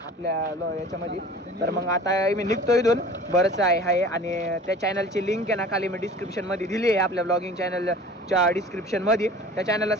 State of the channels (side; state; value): both; normal; correlation 0.43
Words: आपल्या याच्यामध्ये. तर मग आता मी निघतो इथून. बरंच आहे आणि त्या चॅनलची लिंक आहे ना खाली मी डिस्क्रिप्शनमध्ये दिली आहे, आपल्या ब्लॉगिंग चॅनलच्या डिस्क्रिप्शनमध्ये. त्या चॅनलला